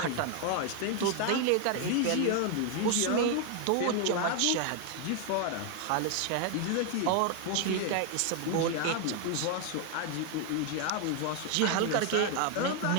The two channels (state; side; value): different; both; correlation 0.01